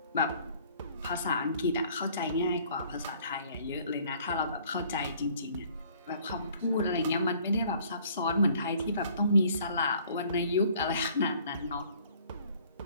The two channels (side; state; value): both; inverted; correlation -0.57